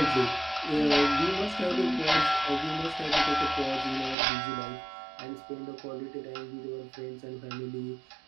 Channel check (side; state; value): left; drops out; at 4.2 s